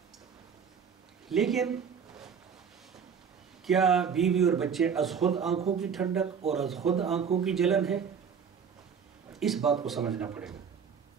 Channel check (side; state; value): left; quieter; 6.8 dB